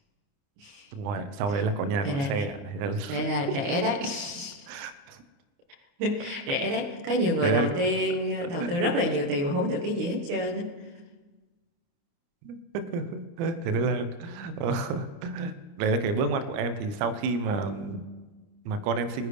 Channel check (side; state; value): left; late; 29 ms